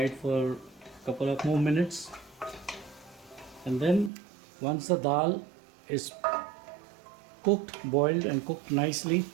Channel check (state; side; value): drops out; left; at 4.1 s